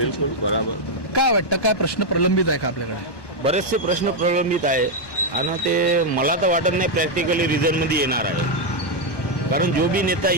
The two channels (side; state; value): right; late; 1.1 ms